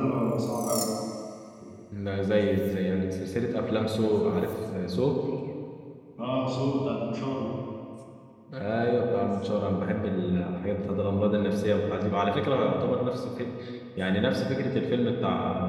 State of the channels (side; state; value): both; identical; correlation 1.00